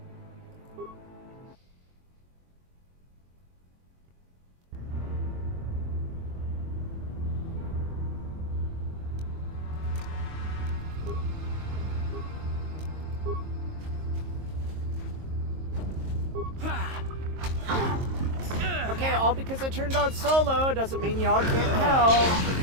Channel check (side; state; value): left; late; 22 ms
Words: Okay, all because I turned on solo doesn't mean y'all can't help.